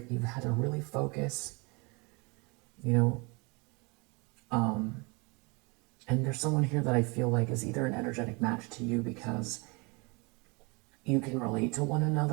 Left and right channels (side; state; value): left; quieter; 29.0 dB